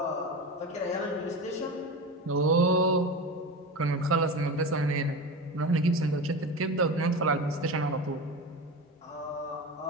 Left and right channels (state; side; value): normal; both; correlation 0.26